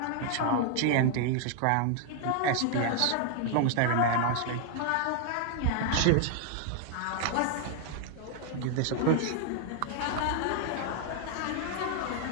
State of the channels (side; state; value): both; different; correlation 0.00